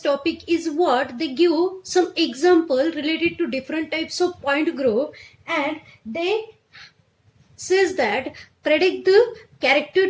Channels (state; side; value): identical; both; correlation 1.00